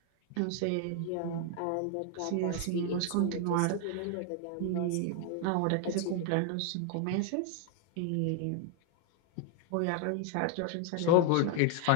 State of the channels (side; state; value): both; different; correlation 0.00